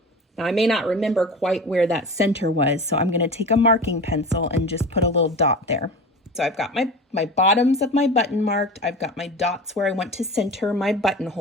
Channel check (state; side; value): normal; both; correlation 0.32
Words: Now I may not remember quite where that center was, so I'm gonna take a marking pencil and just put a little dot there. So I've got my bottoms of my button marked. I've got my dots where I want to center my